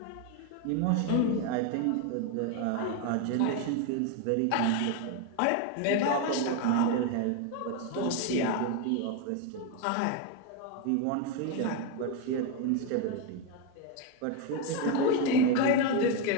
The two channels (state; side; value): different; both; correlation 0.02